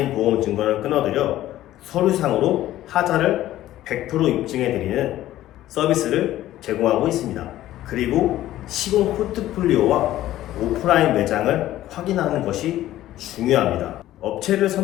보험 증권을 끊어드려 서류상으로 하자를 100% 입증해 드리는 서비스를 제공하고 있습니다. 그리고 시공 포트폴리오와 오프라인 매장을 확인하는 것이 중요합니다. 업체를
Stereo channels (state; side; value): quieter; right; 14.2 dB